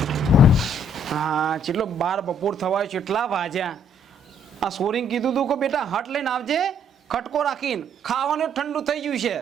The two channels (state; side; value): normal; both; correlation 0.65